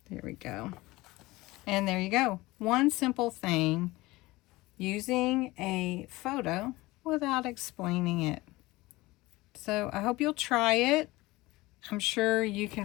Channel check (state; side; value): quieter; right; 20.2 dB